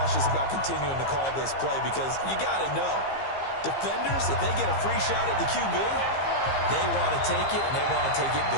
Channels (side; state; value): right; late; 15 ms